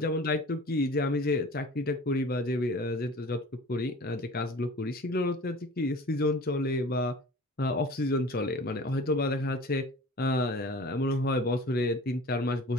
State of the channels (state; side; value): normal; both; correlation 0.42